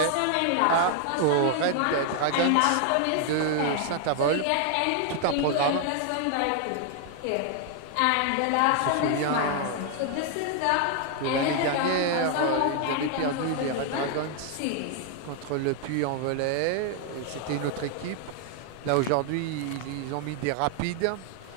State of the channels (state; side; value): different; both; correlation 0.00